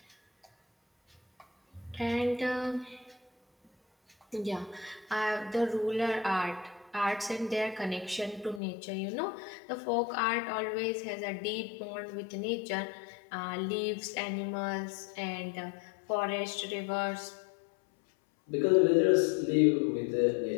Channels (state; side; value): drops out; right; at 8.6 s